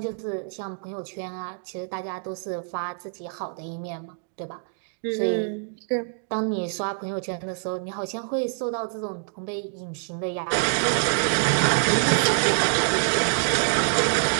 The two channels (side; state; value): left; silent; 61 dB below the other